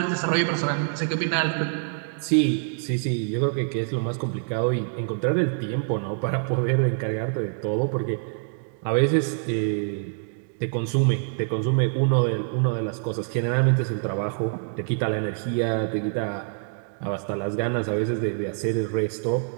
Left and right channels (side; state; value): left; silent; digital silence